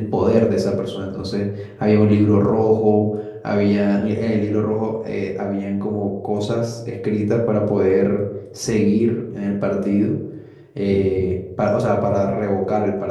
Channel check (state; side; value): identical; both; correlation 1.00